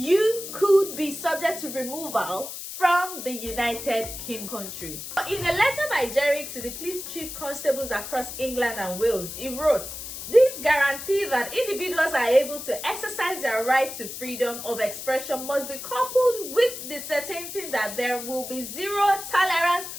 could be subject to removal from the United Kingdom country. In a letter by Jerry to the police chief constables across England and Wales, he wrote, "This guarantee that individuals are able to exercise their right to freedom of expression must be coupled with the certainty that there will be zero tolerance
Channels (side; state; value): left; noise; hiss, 9 dB below the sound